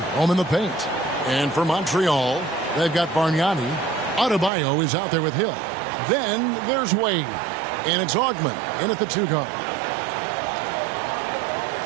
home in the paint. And for Montreal, they've got Bargnani. Adebayo is out there with Hill. Then there's Wade, and it's Augman in at the 2 guard.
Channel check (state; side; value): drops out; left; at 4.5 s